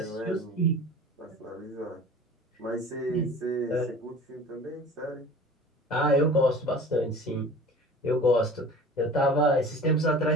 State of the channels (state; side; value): normal; both; correlation 0.41